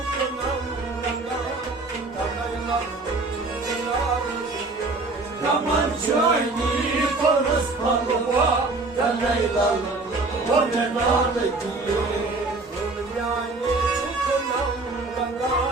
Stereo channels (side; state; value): left; quieter; 3.4 dB